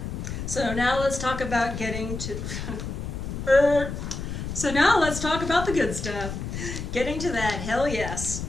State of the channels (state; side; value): noise; left; rumble, 6 dB below the sound